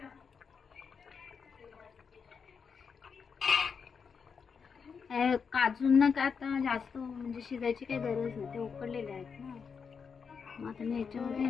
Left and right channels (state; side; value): quieter; right; 6.0 dB